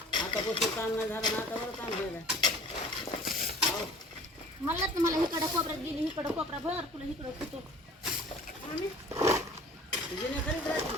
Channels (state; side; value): normal; both; correlation 0.47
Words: आता बसून ताण नाही झालं ना आता बरं ताण व्हायला मला तुम्हाला इकडं कोपऱ्यात गेली इकडं कोपरा भर तुला इकडं होतो जिनेखालीच राहते